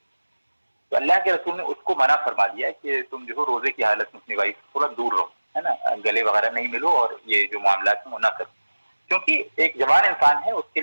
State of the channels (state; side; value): inverted; both; correlation -1.00